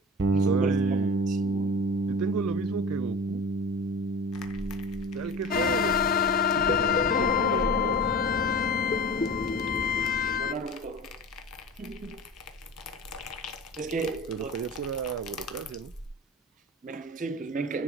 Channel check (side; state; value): both; normal; correlation 0.35